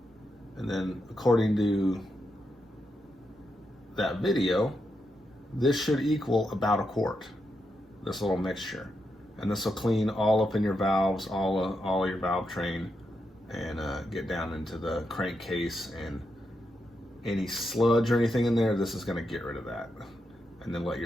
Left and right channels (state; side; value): normal; both; correlation 0.84